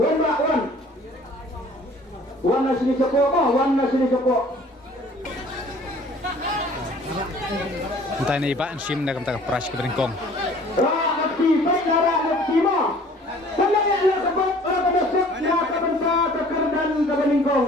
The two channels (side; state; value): both; normal; correlation 0.52